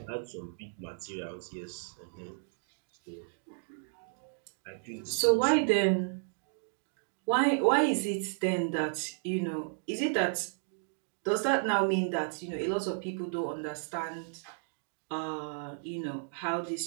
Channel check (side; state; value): left; silent; digital silence